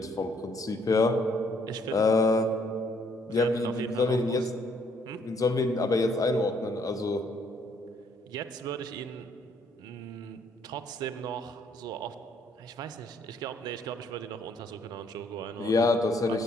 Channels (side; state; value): both; normal; correlation 0.67